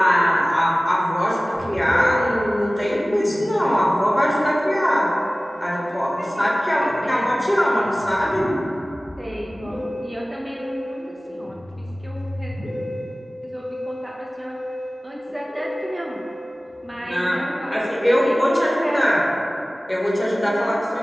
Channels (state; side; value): normal; both; correlation 0.97